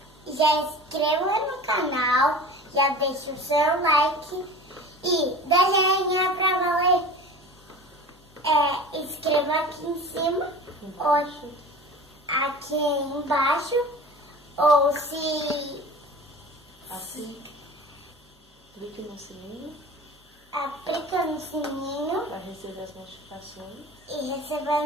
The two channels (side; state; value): both; normal; correlation 0.37